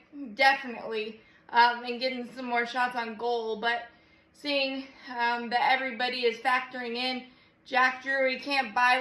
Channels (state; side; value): identical; both; correlation 1.00